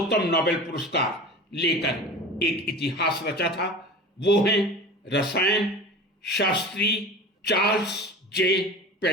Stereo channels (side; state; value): both; normal; correlation 0.35